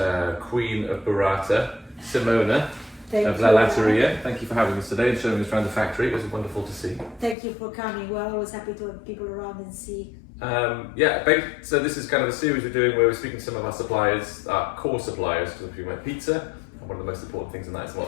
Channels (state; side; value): drops out; right; at 7.4 s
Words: Queen of Burrata, Simona of Latteria. Thank you for having us today and showing us around the factory. It was wonderful to see. Thank you for coming. We're always happy to have people around and see. So this is kind of a series we're doing where we're speaking to some of our suppliers, our core suppliers, because if you make pizza, and one of the most important things in that is